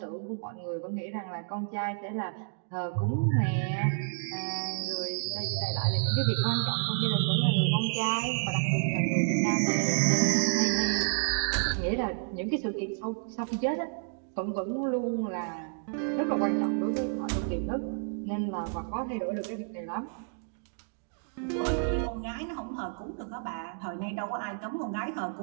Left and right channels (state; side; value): silent; left; digital silence